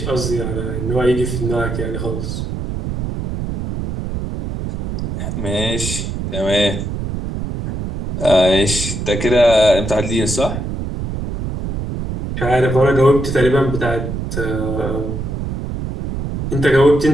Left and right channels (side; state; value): right; noise; rumble, 5 dB below the sound